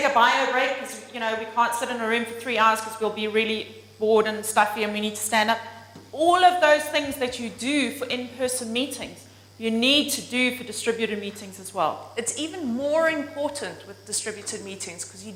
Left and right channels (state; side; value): identical; both; correlation 1.00